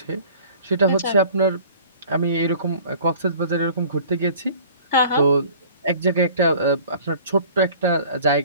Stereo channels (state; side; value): inverted; both; correlation -0.48